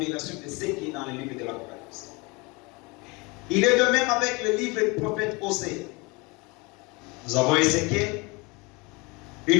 de ce qui est dans le livre de l'Apocalypse. Il est de même avec le livre du prophète Osée. Nous avons Ézéchiel,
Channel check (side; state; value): right; quieter; 26.7 dB